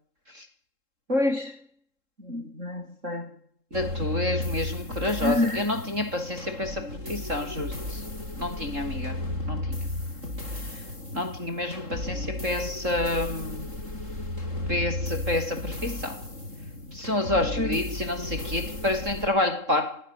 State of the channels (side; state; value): left; late; 3.7 ms